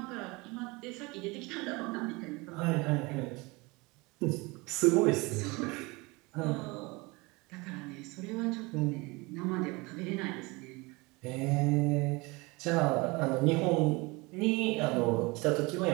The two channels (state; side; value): quieter; left; 24.9 dB